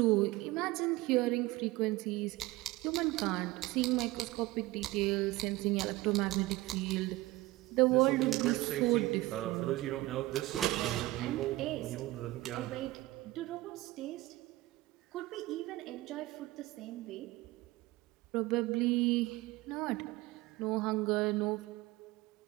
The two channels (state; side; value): quieter; left; 19.1 dB